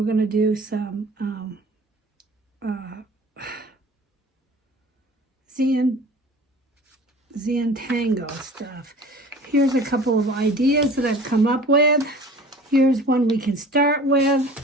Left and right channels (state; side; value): normal; both; correlation 0.44